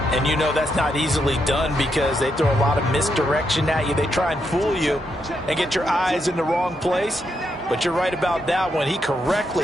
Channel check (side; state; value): both; normal; correlation 0.81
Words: And you know that's not easily done because they throw a lot of misdirection at you. They try and fool you and get your eyes in the wrong place. But you're right about that one. He correctly